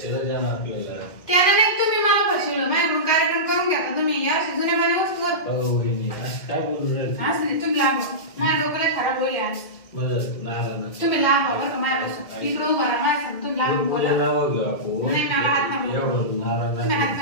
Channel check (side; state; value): right; late; 2.0 ms